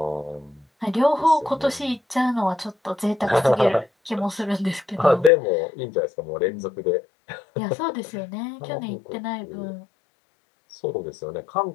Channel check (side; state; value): right; drops out; at 5.3 s